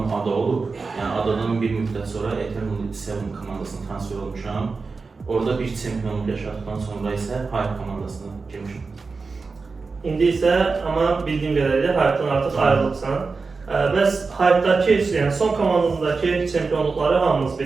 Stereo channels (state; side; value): quieter; left; 4.4 dB